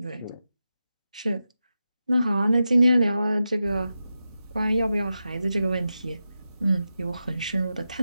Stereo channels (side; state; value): both; inverted; correlation -0.91